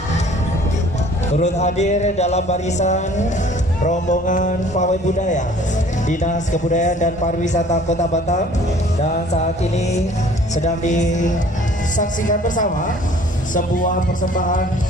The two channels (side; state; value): both; normal; correlation 0.52